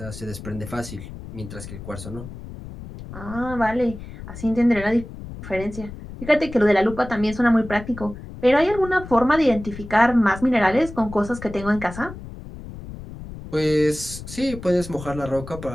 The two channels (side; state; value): left; noise; rumble, 12 dB below the sound